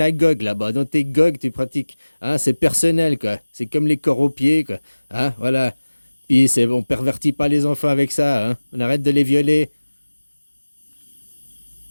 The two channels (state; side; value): inverted; both; correlation -1.00